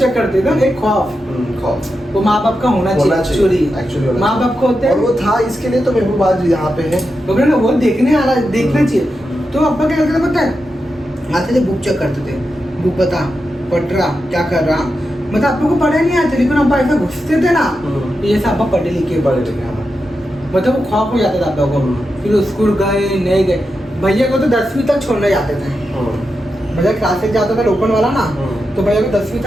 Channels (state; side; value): normal; both; correlation 0.88